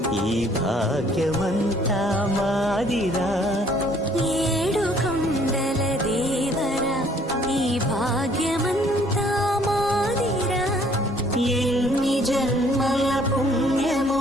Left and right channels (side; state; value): both; normal; correlation 0.60